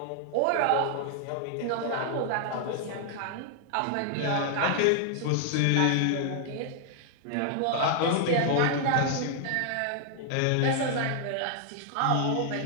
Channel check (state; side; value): different; both; correlation 0.00